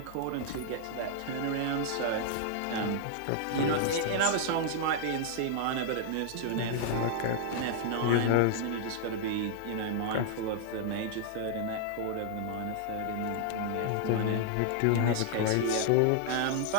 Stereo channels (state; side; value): different; both; correlation -0.01